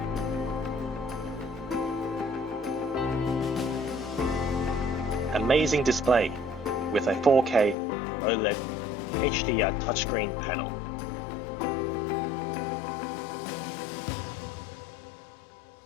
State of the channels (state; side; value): drops out; right; at 7.8 s